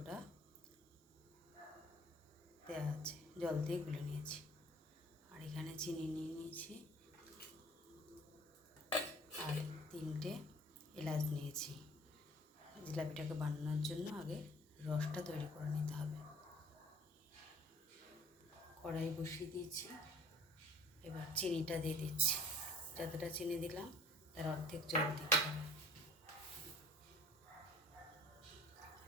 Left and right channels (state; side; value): normal; both; correlation 0.50